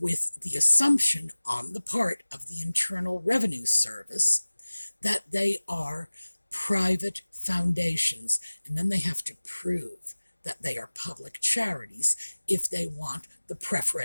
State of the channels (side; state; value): both; inverted; correlation -1.00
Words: the assumption on the part of the Internal Revenue Service that they are private foundations, and then they have to prove that they are public charities if they want the